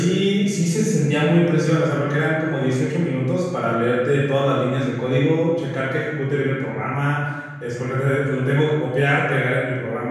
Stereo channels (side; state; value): both; identical; correlation 1.00